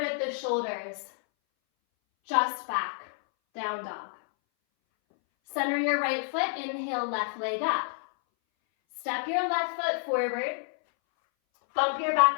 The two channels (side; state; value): right; silent; 59 dB below the other